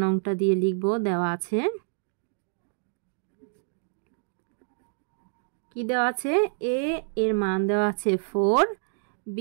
নংটা দিয়ে লিখব। দেওয়া আছে কি দেওয়া আছে, a এর মান দেওয়া আছে 4, b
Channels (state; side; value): silent; left; digital silence